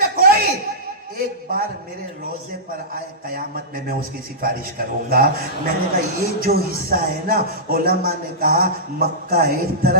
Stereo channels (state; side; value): normal; both; correlation -0.16